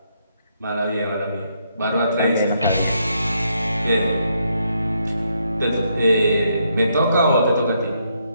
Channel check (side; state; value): both; inverted; correlation -0.75